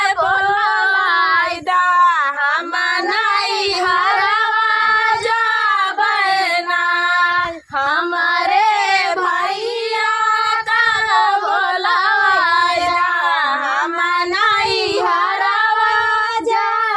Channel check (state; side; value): identical; both; correlation 1.00